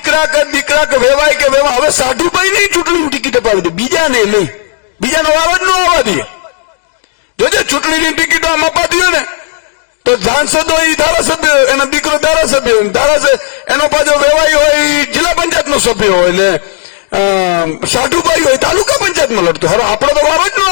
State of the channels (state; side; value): silent; right; digital silence